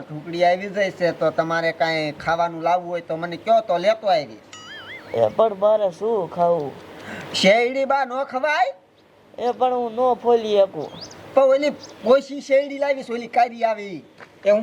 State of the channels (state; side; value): identical; both; correlation 1.00